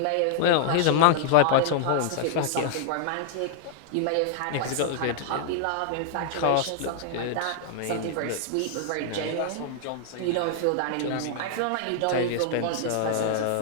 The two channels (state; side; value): different; both; correlation -0.01